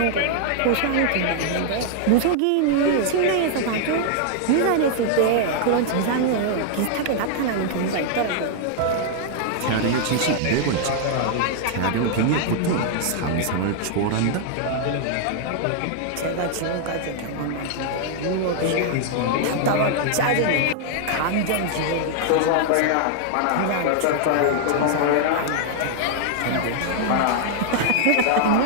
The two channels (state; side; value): different; both; correlation -0.01